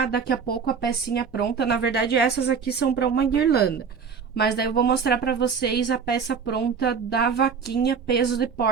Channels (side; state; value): left; quieter; 6.0 dB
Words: daqui a pouco a pecinha pronta. Na verdade, essas aqui são para uma guirlanda. Mas daí eu vou mostrar para vocês a peça pronta da vaquinha peso de